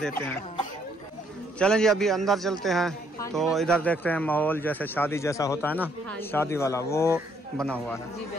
हैं। चलें जी अभी अंदर चलते हैं, तो इधर देखते हैं माहौल जैसे शादी जैसा होता है ना, शादी वाला वो बना हुआ है।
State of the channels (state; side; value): normal; both; correlation 0.69